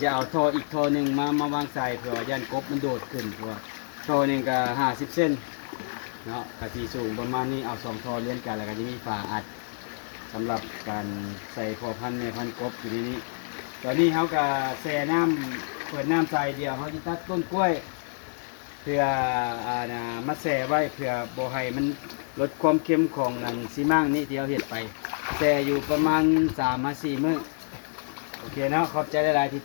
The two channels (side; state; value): right; silent; digital silence